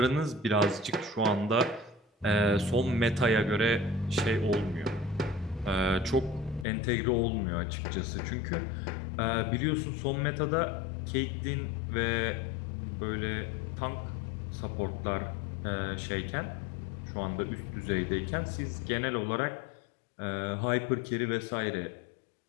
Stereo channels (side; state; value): right; drops out; at 6.7 s